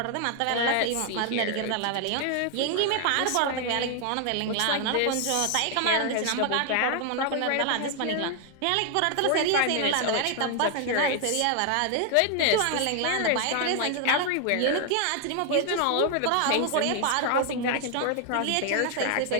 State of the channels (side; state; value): both; different; correlation 0.00